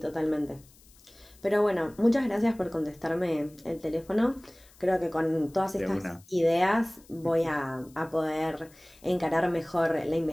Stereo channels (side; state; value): left; noise; hiss, 27 dB below the sound